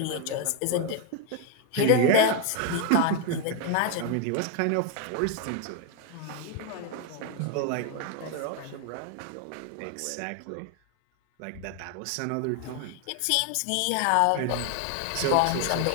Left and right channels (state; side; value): different; both; correlation 0.01